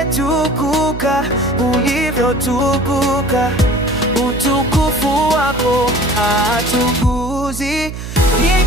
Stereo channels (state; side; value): noise; right; hum, 9 dB below the sound